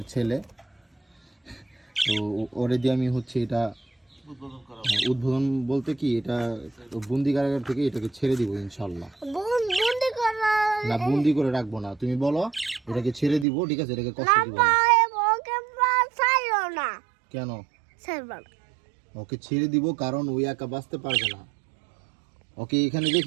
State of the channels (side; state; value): left; drops out; at 13.5 s